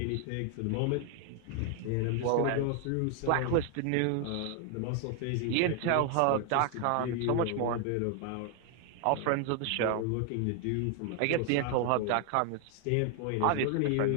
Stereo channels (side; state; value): both; different; correlation 0.00